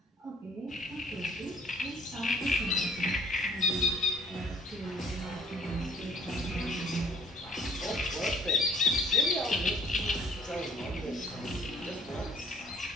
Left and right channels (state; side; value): normal; both; correlation 0.58